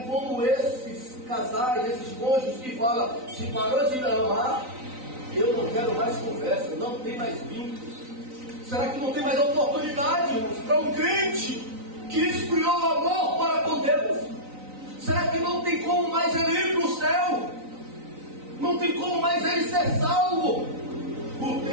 esses casais, esses cônjuges que falam: se parou de me amar, eu não quero mais conversa, não tem mais vínculos? Será que não tem mais oportunidade, irmãos, para um crente que esfriou o amor para com Deus? Será que não tem como mais ele ir para o céu? Não tem como mais ele ser salvo? O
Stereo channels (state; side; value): late; left; 3.9 ms